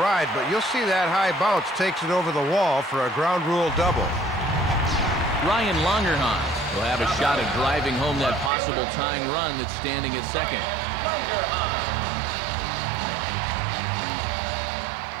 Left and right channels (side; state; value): left; drops out; at 8.5 s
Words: ride, but you'll see that high bounce takes it over the wall for a ground rule double. Ryan Longerhans will have a shot at driving home that possible tying run that's standing at second.